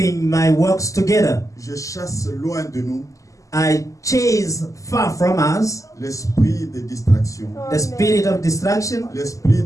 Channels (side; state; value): right; late; 0.16 ms